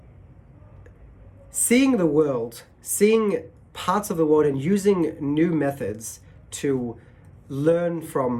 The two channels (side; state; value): both; identical; correlation 1.00